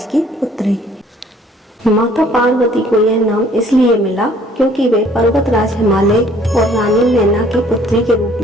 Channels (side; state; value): both; normal; correlation 0.58